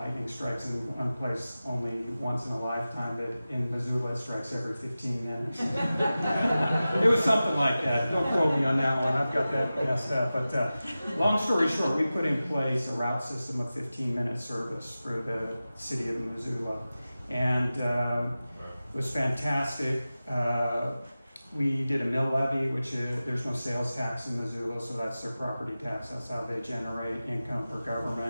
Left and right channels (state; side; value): inverted; both; correlation -0.95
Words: strikes in one place only once in a lifetime, but in Missoula it strikes every 15 minutes. It was something like that. Don't quote me on that one. I've got that messed up. But long story short, we put in place a route system of 15-minute service for the city of Missoula. And it was fantastic. We did a mill levy, which there's no sales tax in Missoula, so that's their property tax. That's how they generate income for